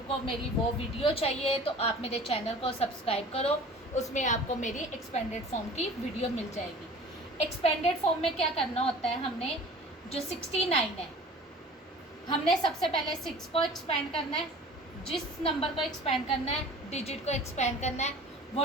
मेरी वो वीडियो चाहिए तो आप मेरे चैनल को सब्सक्राइब करो, उसमें आपको मेरी एक्सपेंडेड फॉर्म की वीडियो मिल जाएगी। एक्सपेंडेड फॉर्म में क्या करना होता है, हमने जो 69 है, हमने सबसे पहले 6 को एक्सपेंड करना है, जिस नंबर को एक्सपेंड करना है, डिजिट को एक्सपेंड करना है,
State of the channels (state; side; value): normal; both; correlation 0.44